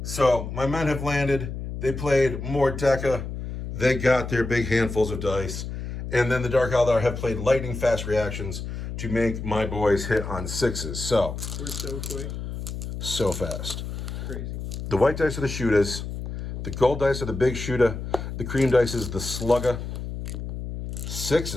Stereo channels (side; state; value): left; noise; hum, 6 dB below the sound